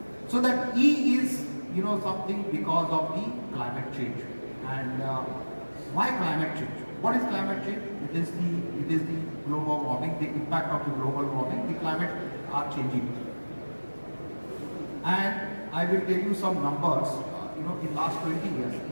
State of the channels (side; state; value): both; inverted; correlation -1.00